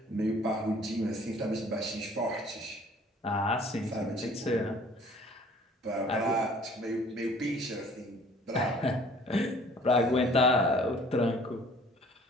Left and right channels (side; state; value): both; normal; correlation 0.53